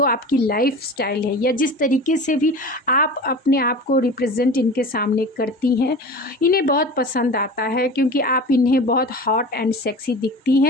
आपकी लाइफ स्टाइल है, या जिस तरीके से भी आप अपने आप को रिप्रेजेंट इनके सामने करती हैं, इन्हें बहुत पसंद आता है, क्योंकि आप इन्हें बहुत हॉट एंड सेक्सी दिखती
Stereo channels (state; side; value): normal; both; correlation 0.35